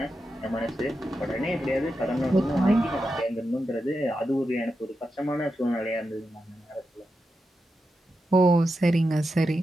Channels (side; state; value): both; normal; correlation 0.88